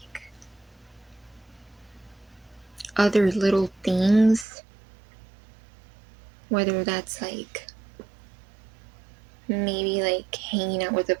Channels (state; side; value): drops out; left; at 4.5 s